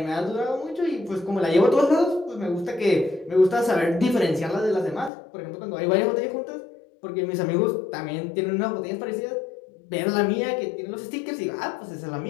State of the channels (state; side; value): drops out; right; at 5.1 s